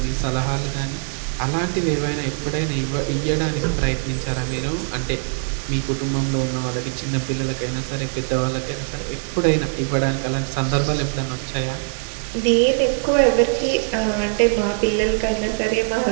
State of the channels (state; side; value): silent; left; 64 dB below the other